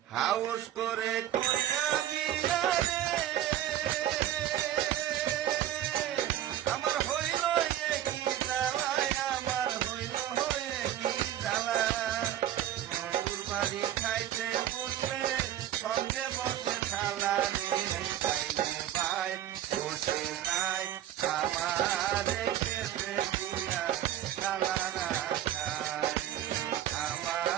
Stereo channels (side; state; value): left; quieter; 11.9 dB